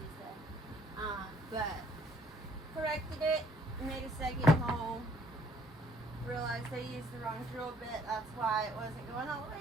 said. But corrected it, made a second hole. Realized I used the wrong drill bit. That's why it wasn't going all the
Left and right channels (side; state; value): both; normal; correlation 0.64